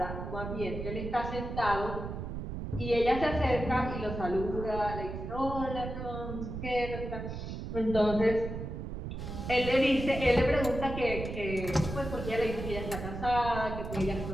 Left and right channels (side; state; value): right; noise; rumble, 6 dB below the sound